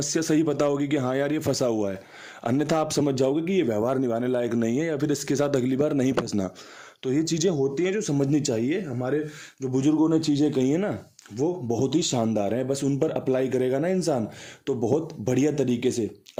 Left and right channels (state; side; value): identical; both; correlation 1.00